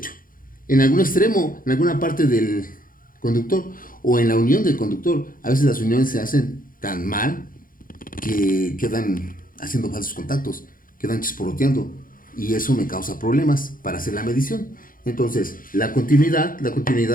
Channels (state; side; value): late; right; 0.40 ms